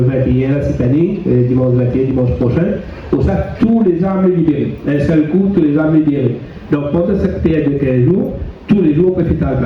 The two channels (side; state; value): both; identical; correlation 1.00